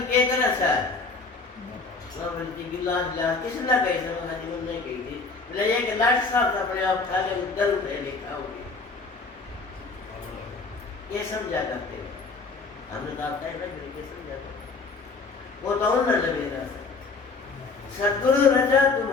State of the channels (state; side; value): quieter; right; 4.0 dB